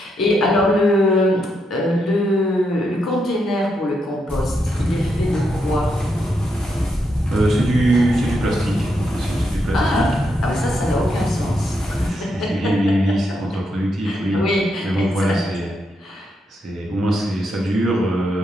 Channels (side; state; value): both; normal; correlation 0.81